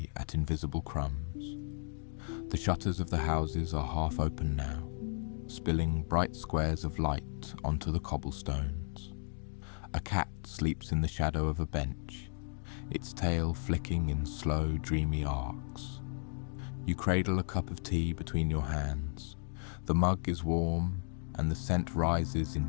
at invisible crumbs. The shutters of the houses are half open now, spilling bright squares of light onto the cobblestones. A cat sleeps in the shadow of a bench, its tail flicking in slow, dreamy arcs. You cradle a cup of tea between your hands. The mug is warm, and the scent rises in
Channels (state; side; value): silent; right; 55 dB below the other